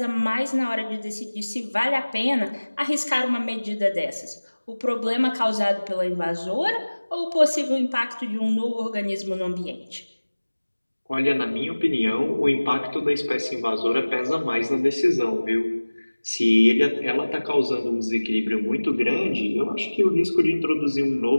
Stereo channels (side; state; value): both; inverted; correlation -1.00